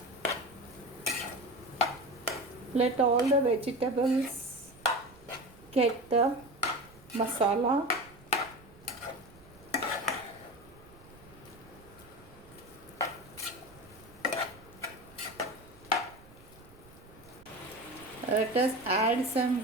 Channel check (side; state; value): right; noise; rumble, 23 dB below the sound